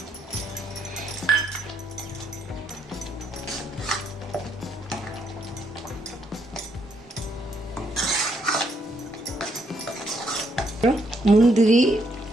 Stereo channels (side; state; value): both; normal; correlation 0.73